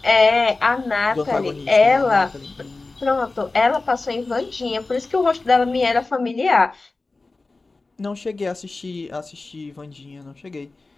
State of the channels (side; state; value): right; quieter; 3.5 dB